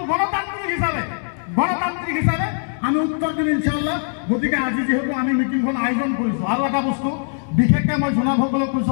গণতান্ত্রিক হিসাবে আমি উত্তর দিম ইনশাআল্লাহ গতিকে আজি যেহেতু আমি মিটিংখন আয়োজন কৰিছো আৰু এটা বস্তু বিশেষকৈ মই জনাবসকলক কৈছো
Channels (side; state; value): right; silent; digital silence